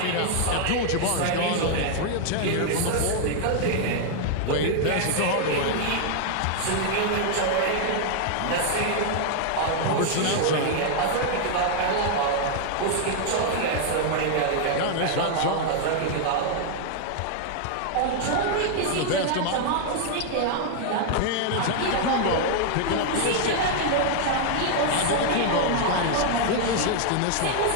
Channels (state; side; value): different; both; correlation 0.00